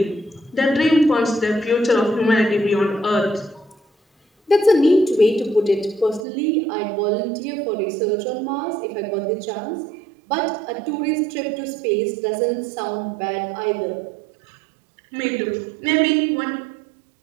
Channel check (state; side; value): drops out; left; at 6.2 s